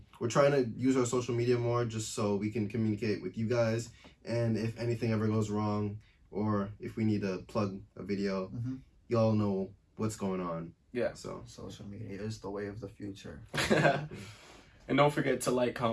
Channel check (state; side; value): identical; both; correlation 1.00